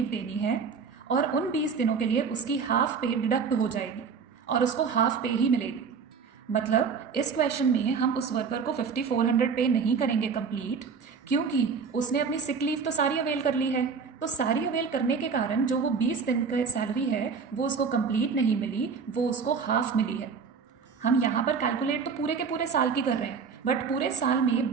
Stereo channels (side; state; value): left; quieter; 5.7 dB